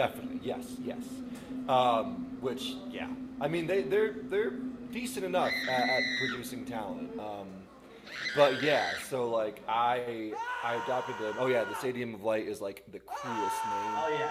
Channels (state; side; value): identical; both; correlation 1.00